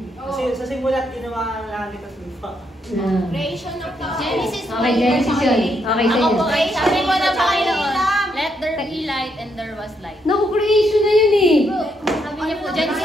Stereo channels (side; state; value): both; normal; correlation 0.77